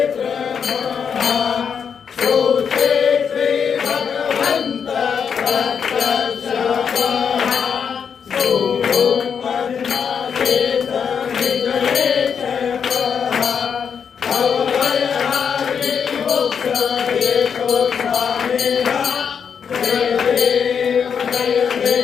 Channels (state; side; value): quieter; right; 6.9 dB